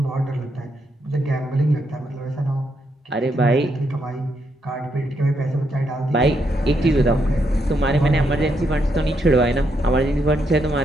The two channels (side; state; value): both; normal; correlation 0.78